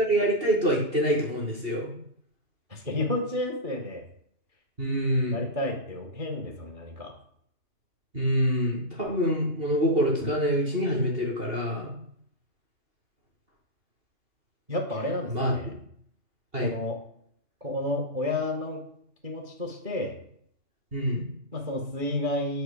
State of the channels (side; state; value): left; late; 2.7 ms